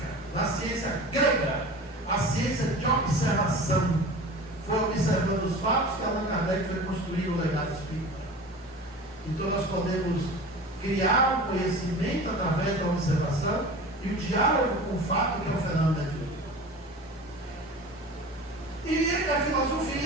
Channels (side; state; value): both; normal; correlation 0.36